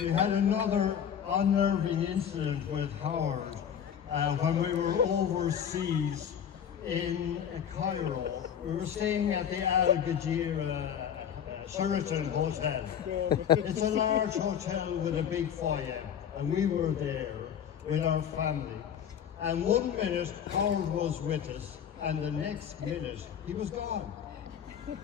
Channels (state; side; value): quieter; right; 8.7 dB